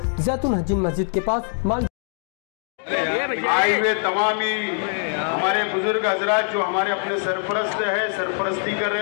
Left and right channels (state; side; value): silent; right; 58 dB below the other